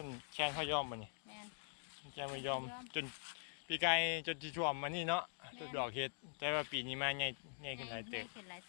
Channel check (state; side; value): silent; right; digital silence